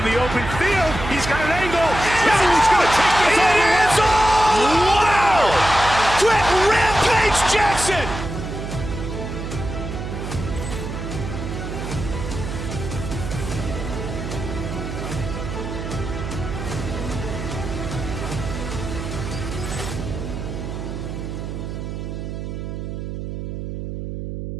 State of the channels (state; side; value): noise; right; hum, 6 dB below the sound